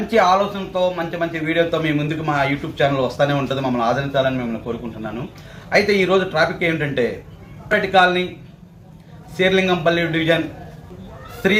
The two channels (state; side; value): identical; both; correlation 1.00